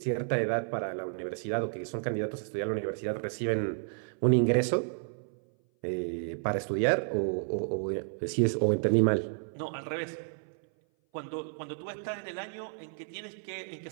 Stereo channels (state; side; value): silent; left; 57 dB below the other